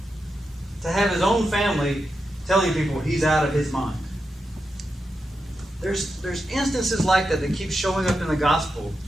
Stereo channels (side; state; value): both; normal; correlation 0.87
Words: to have his own family telling people he's out of his mind. There's instances like that keep showing up in the gospel.